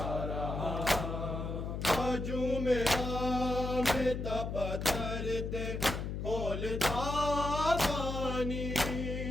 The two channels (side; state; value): left; noise; hum, 4 dB below the sound